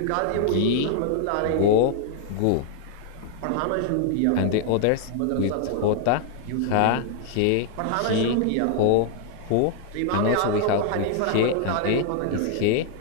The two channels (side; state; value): both; different; correlation 0.00